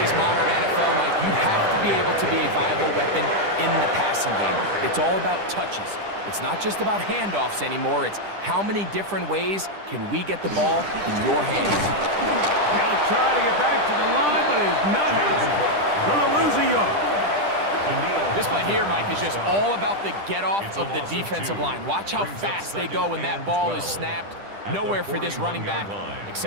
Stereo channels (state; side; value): late; left; 10 ms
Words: modern NFL, Mike, you have to be able to be a viable weapon in the passing game. It's all about touches. It's not just about handoffs anymore. It's how many different ways can we get the ball in your hands. He'll try to get back to the line, but he's not happening. Gonna lose a yard. This play here, Mike, is just all about the get-off of the defensive line. Watch how fast they go when that ball is snapped. Nowhere for this running back